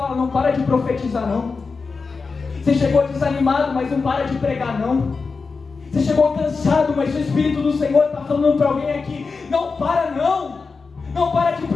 não para de profetizar não. Você chegou desanimado, mas não para de pregar não. Você chegou cansado, mas o Espírito do Senhor está falando para alguém aqui: não para não. Não para de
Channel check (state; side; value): quieter; right; 4.6 dB